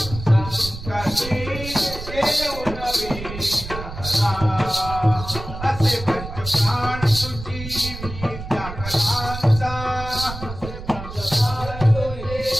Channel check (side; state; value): right; noise; rumble, 10 dB below the sound